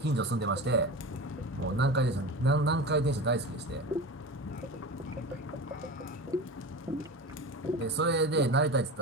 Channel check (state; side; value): normal; both; correlation 0.29